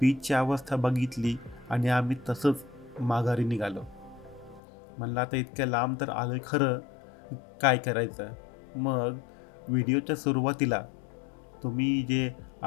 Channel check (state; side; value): drops out; right; at 4.6 s